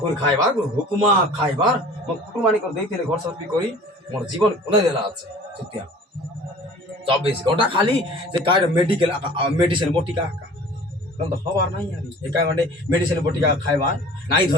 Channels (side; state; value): both; normal; correlation 0.45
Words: করে খাইবার হুকুমা খাইবার মো কুটুমানি করে দিয়েছিল ঘর সবি করি মোর জীবন খন্দাই দেলা আছে সত্যিয়া 24 ঘন্টা খালি যে কার মেডিকেল মেডিসিন বটিকা তো হবার নাই আরে একা মানে মেডিসিন বটিকা খাইবার নাই